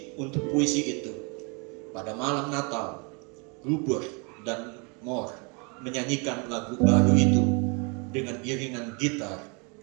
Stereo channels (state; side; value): quieter; left; 32.9 dB